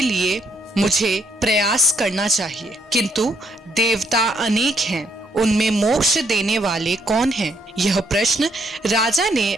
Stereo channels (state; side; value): normal; both; correlation 0.71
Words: लिए मुझे प्रयास करना चाहिए। किंतु देवता अनेक हैं, उनमें मोक्ष देने वाले कौन हैं? यह प्रश्न राजा ने